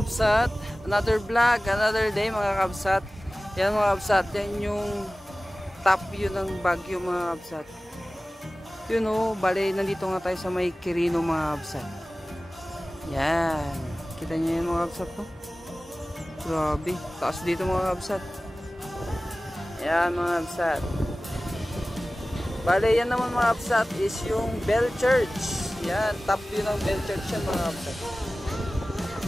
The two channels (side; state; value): both; normal; correlation 0.97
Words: kabsat? Another vlog, another day mga kabsat. Yan mga kabsat, yan yung top view ng Baguio mga kabsat. Yun o, bali nandito nga tayo sa may Quirino mga kabsat. Yan, kita nyo yan mga kabsat po. Grabe, taas dito mga kabsat. Yan mga kabsat. Bali yan naman mga kabsat is yung Bell Church. Yan, top view ng Bell Church yan mga kabsat.